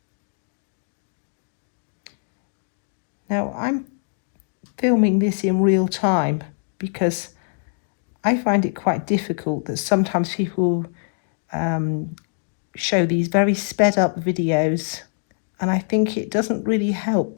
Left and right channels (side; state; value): right; silent; digital silence